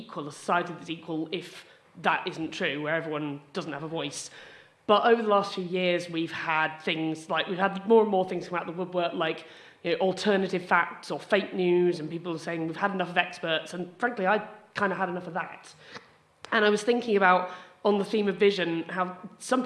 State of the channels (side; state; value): both; identical; correlation 1.00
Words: a society that's equal, if that isn't true, where everyone doesn't have a voice. But over the last few years, we've had more and more things come out of the woodwork, like alternative facts or fake news, and people are saying we've had enough of experts, and frankly, I kind of had enough of that. And I was thinking about, on the theme of vision, how some